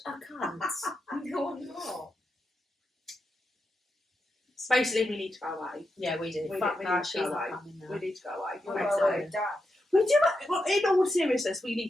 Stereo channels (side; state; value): both; normal; correlation 0.86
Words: a cunt. No, I'm not. Basically, we need to go away. Yeah, we do. We Fuck need that. to She's go not away. coming now. We need to go away. You're Okay, well so- away, Dad. We do. Well, in all seriousness, we